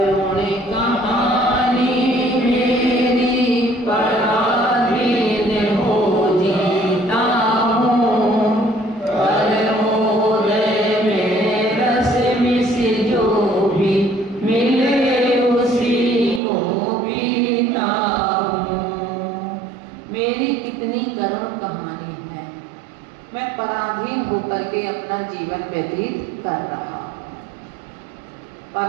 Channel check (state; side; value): drops out; left; at 16.4 s